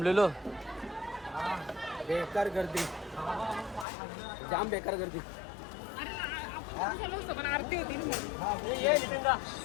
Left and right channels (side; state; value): right; drops out; at 3.9 s